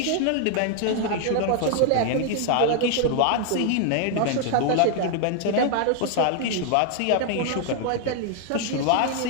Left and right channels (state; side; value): different; both; correlation 0.00